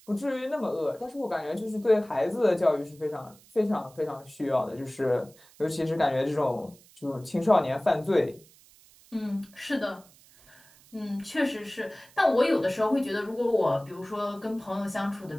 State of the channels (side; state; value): right; noise; hiss, 26 dB below the sound